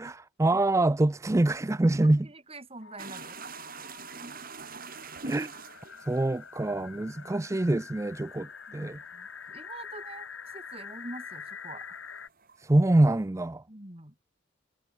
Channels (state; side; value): normal; both; correlation 0.90